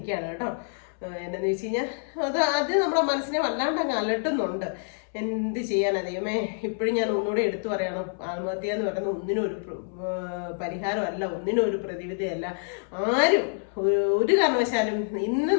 കേട്ടോ. എന്നാന്ന് വെച്ച് കഴിഞ്ഞാൽ അത് നമ്മുടെ മനസ്സിനെ വല്ലാണ്ട് അങ്ങ് അലട്ടുന്നുണ്ട്. എന്ത് ചെയ്യാനാ ദൈവമേ. ഇപ്പോഴും ഞാൻ ഒന്നുകൂടെ എടുത്തു പറയണം, ആത്മഹത്യ എന്ന് പറയുന്നത് ഒന്നിനും ഒരു പരിഹാരമല്ല, ഒന്നിനും ഒരു പ്രതിവിധിയല്ല. ആരും ഒരു കാരണവശാലും ഇന്ന്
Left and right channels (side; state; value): right; silent; 60 dB below the other